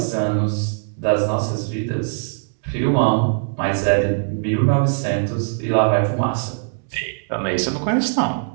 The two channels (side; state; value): left; silent; digital silence